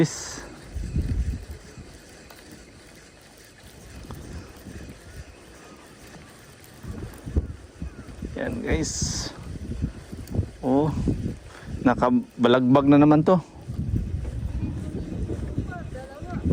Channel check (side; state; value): both; identical; correlation 1.00